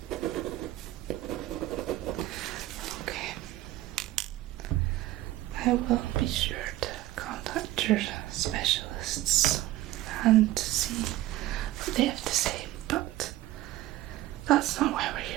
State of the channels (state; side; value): quieter; left; 15.7 dB